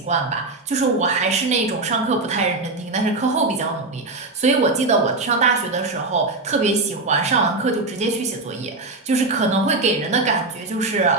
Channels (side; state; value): left; quieter; 3.3 dB